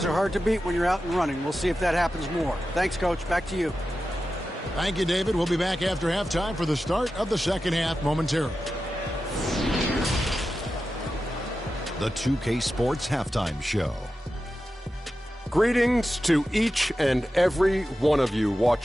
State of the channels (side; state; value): both; normal; correlation 0.92